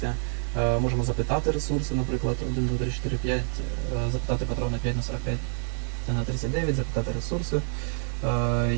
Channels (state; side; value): silent; left; 60 dB below the other